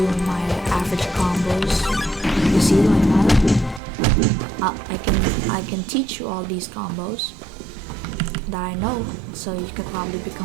my average combos. You see like that? I can teach you all these combos that I know, so you could probably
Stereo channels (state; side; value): drops out; left; at 3.8 s